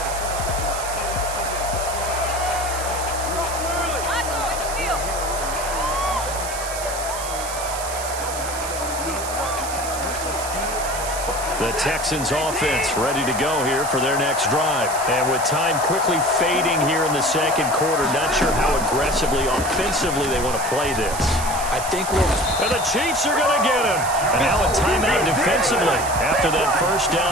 The Texans offense ready to go here for their next drive. And with time quickly fading here in the second quarter, not sure how aggressively, offensively they want to play this. I think and the Chiefs are going to get him. And now a timeout defensively after that first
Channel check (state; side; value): noise; right; hiss, 8 dB below the sound